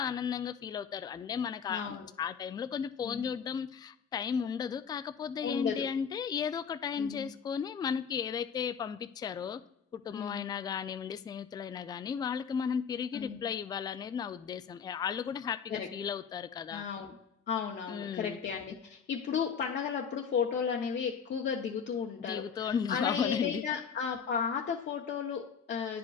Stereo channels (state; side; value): quieter; right; 6.8 dB